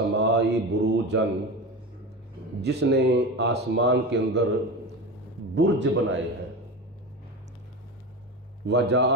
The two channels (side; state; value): both; normal; correlation 0.25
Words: بروجا، جس نے آسمان کے اندر برج بنائے ہیں،